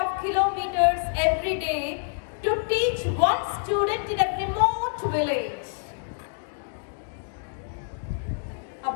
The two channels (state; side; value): silent; right; 60 dB below the other